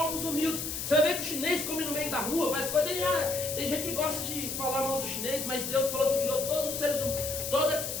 humildes. Você vai ver que o chinês come no meio da rua, mas tem gente que gosta de falar mal do chinês, mas Deus falou que criou todos os seres humanos,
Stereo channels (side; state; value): left; noise; hiss, 4 dB below the sound